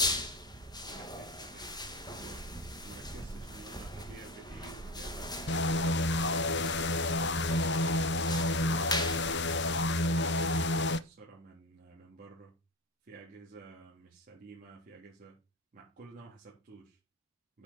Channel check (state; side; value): normal; both; correlation 0.24